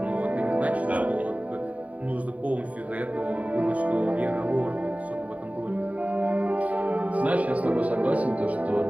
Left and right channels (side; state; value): left; late; 0.069 ms